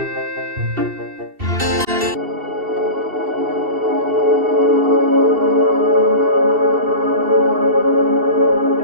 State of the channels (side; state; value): left; late; 2.7 ms